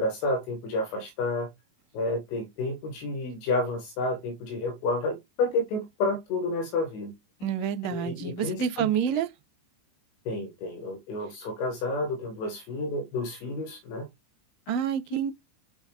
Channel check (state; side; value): late; right; 19 ms